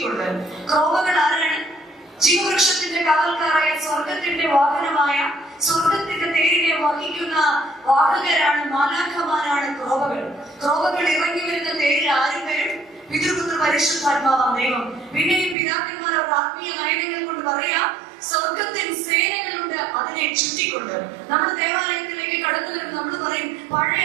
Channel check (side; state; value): left; drops out; at 15.6 s